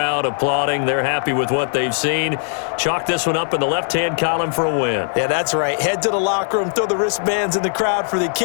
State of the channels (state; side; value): silent; right; digital silence